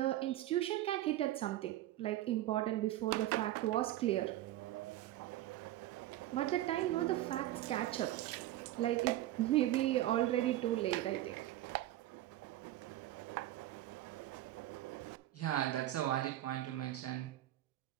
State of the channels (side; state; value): left; quieter; 14.6 dB